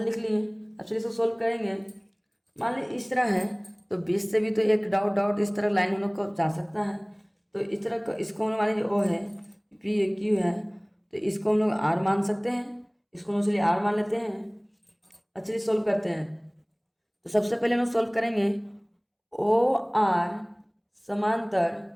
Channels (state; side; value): identical; both; correlation 1.00